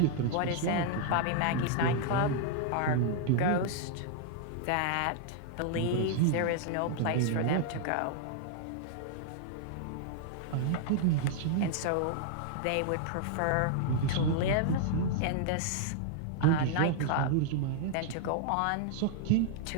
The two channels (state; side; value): different; both; correlation -0.01